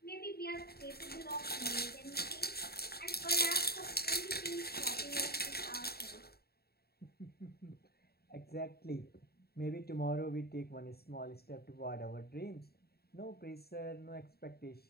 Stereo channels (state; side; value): late; right; 0.46 ms